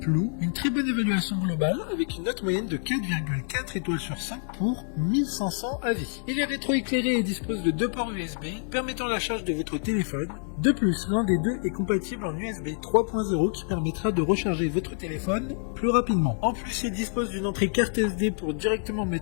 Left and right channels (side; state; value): right; silent; 60 dB below the other